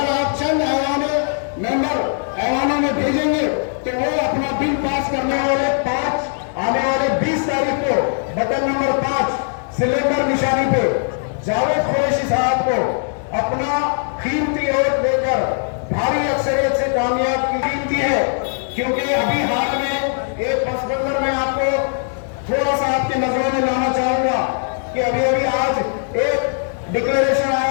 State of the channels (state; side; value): silent; right; 66 dB below the other